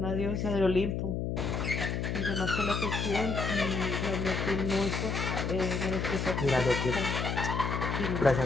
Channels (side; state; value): left; noise; hum, 1 dB below the sound